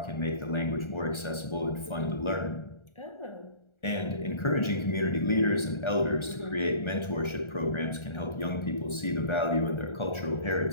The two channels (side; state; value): right; late; 1.4 ms